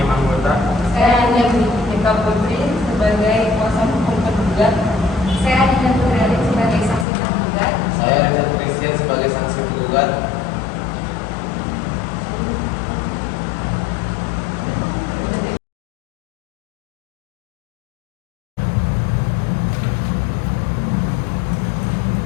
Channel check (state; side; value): drops out; right; at 7.1 s